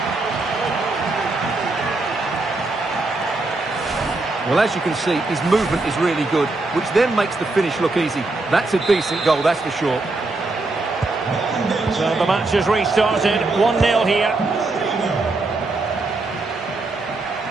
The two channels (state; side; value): quieter; left; 3.2 dB